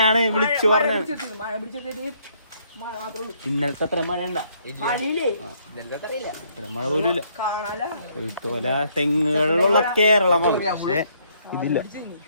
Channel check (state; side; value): inverted; both; correlation -0.68